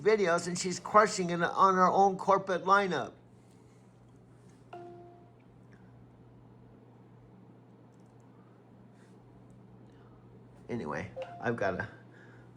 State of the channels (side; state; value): both; identical; correlation 1.00